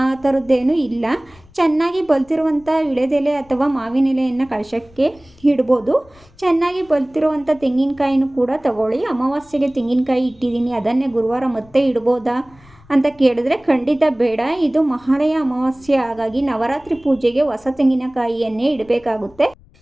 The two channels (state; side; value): noise; left; rumble, 27 dB below the sound